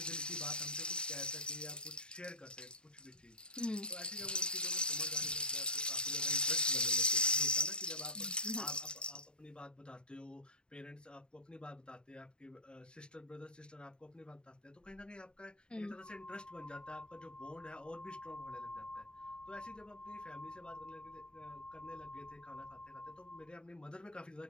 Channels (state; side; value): late; right; 0.050 ms